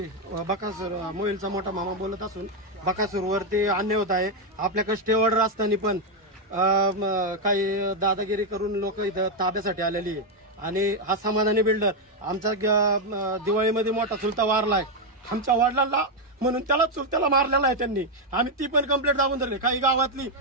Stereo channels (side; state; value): both; normal; correlation 0.02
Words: बकासूर मोहिलचा मोठा मामा बोलत असून बकासूरवरती अन्याय होत आहे. आपल्याकडे स्टे ऑर्डर असताना पण काही दादागिरी करून लोक इथं ताब्यासाठी आलेली आहे. आणि हा समाधानी बिल्डर आमचा दिवाळीमध्ये मोठा चुलता वारलाय आमच्या वडिलांना, म्हणून त्याला चुलत्याला मारलेला आहे त्यांनी. आम्ही ती पण कंप्लेंट दाबून धरली. काही गावातली